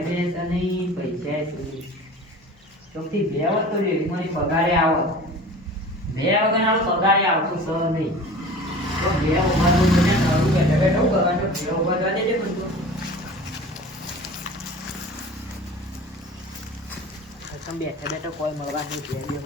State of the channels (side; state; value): both; normal; correlation 0.40